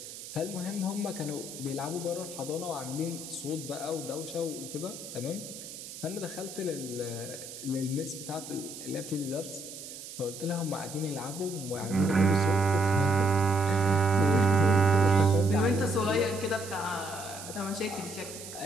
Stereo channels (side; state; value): right; noise; hiss, 12 dB below the sound